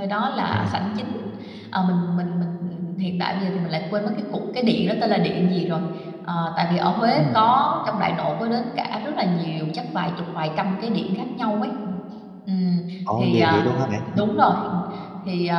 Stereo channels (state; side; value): identical; both; correlation 1.00